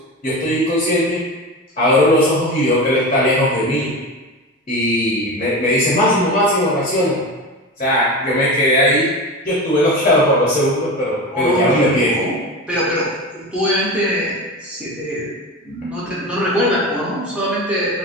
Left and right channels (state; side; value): normal; both; correlation 0.26